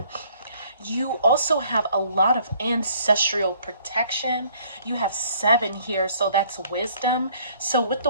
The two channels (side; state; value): both; inverted; correlation -0.60